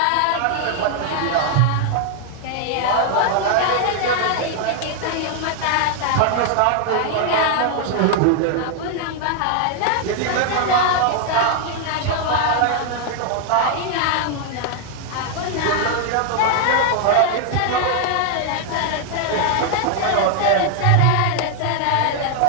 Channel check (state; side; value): different; both; correlation 0.00